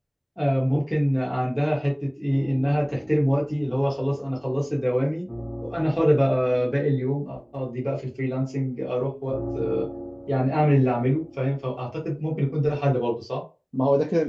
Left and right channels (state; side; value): identical; both; correlation 1.00